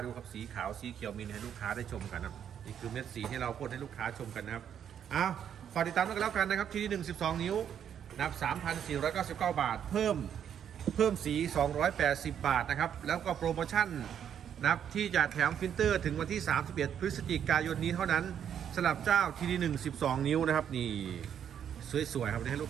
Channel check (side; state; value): left; quieter; 8.9 dB